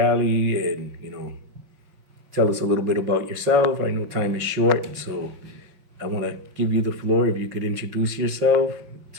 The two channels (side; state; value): left; late; 5.6 ms